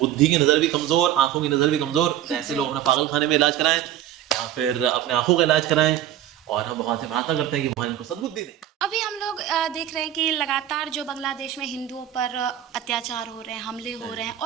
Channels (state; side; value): quieter; left; 11.7 dB